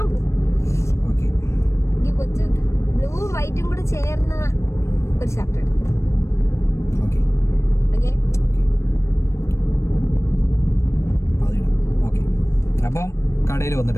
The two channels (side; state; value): right; late; 0.14 ms